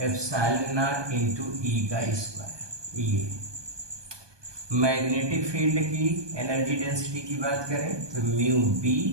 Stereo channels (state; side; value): late; left; 1.2 ms